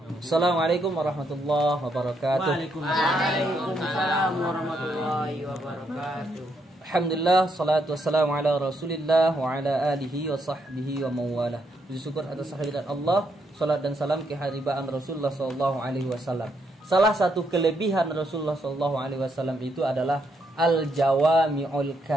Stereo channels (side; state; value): both; normal; correlation 0.77